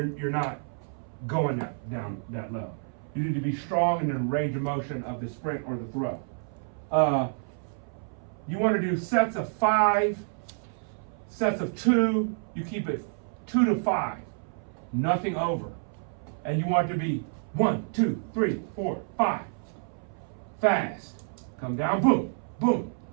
not going down that low. You need to be strong in the range of motion of the sprint or the throw. You want to do sets of 5, sets of 2. You keep it 2 to 5, nothing over. And you want it to be 1, 2, 3, 4, 5. Fast. Come down, boom, boom,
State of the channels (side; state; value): left; silent; 59 dB below the other